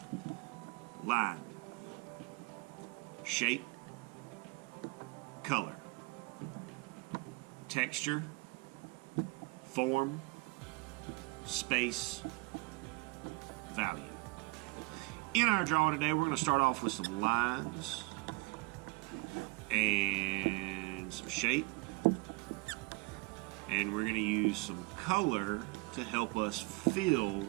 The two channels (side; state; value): left; quieter; 26.0 dB